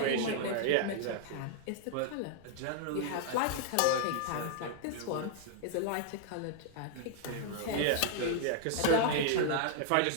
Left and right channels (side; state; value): both; different; correlation -0.01